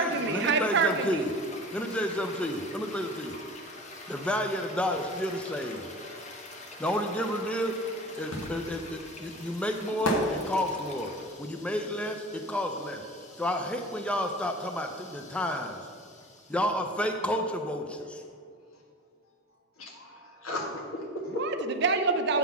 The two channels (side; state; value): both; normal; correlation 0.36